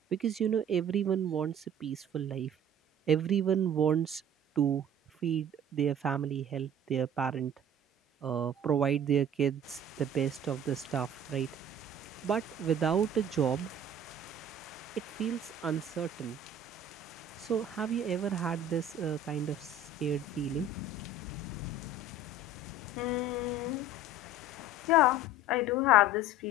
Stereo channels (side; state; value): both; normal; correlation 0.44